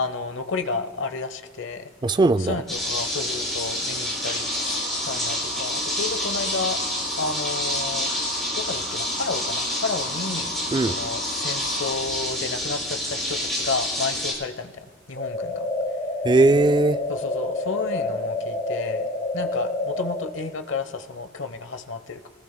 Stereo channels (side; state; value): both; normal; correlation 0.32